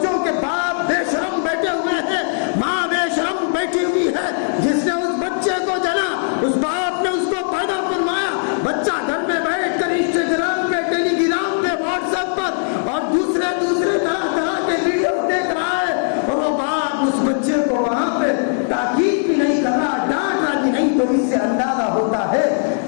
کے باپ بے شرم بیٹھے ہوئے ہیں, ماں بے شرم بیٹھی ہوئی ہے. جس نے اس بچے کو جنا, اس باپ نے اس کو پیدا فرمایا, بچہ گھر میں بیٹھ کر انسٹاگرام پہ, ٹیلی گرام پہ, واٹس ایپ پر اور دوسرے طرح طرح کے ویڈیو دیکھ رہا ہے, اور وہ باپ اس بچے کو وہاں پہ تاکید بھی نہیں کر رہا, ڈانٹ رہا بھی نہیں. تو اس سے اندازہ ہوتا ہے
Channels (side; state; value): right; silent; digital silence